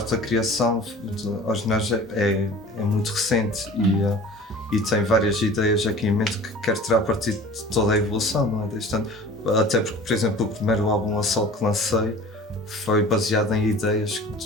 da criação aos ginásio é muito recente e tem várias ideias aqui em mente que quero tirar partido de toda a evolução, não é? Desde tanto, até porque, por exemplo, o primeiro álbum a solo que lancei foi baseado em ideias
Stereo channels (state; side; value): normal; both; correlation 0.43